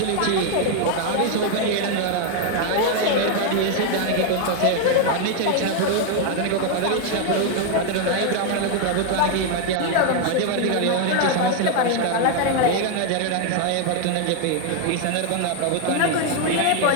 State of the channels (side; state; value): both; different; correlation 0.00